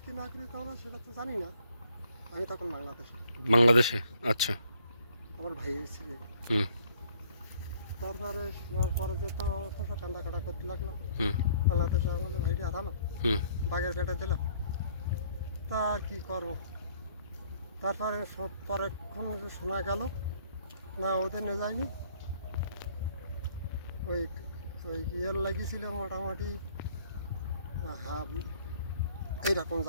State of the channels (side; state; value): both; inverted; correlation -0.62